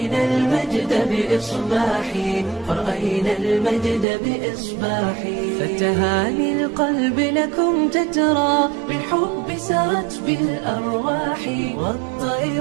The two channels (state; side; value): drops out; left; at 4.0 s